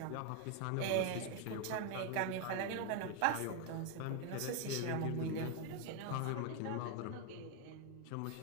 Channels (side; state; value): both; different; correlation 0.01